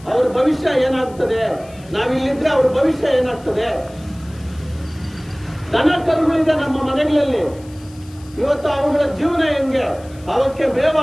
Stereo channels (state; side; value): noise; left; hiss, 25 dB below the sound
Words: ಅವ್ರ ಭವಿಷ್ಯ ಏನಾಗ್ತದೆ, ನಾವಿಲ್ಲಿದ್ರೆ ಅವ್ರ ಭವಿಷ್ಯ ಏನಾಗ್ತದೆ. ದನ ಕರುಗಳಿದೆ ನಮ್ಮ ಮನೆಗಳಲ್ಲಿ, ಇವತ್ತು ಅವುಗಳ ಜೀವನ ಹೆಂಗೆ, ಅವಕ್ಕೆ ಮೇವು